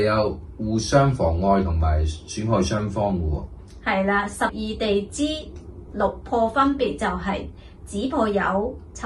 互相妨礙同埋損害雙方嘅喎。係啦，12地支六破分別就係子破酉、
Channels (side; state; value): both; identical; correlation 1.00